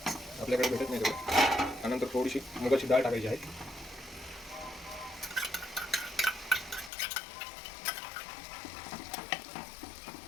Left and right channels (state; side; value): drops out; right; at 6.9 s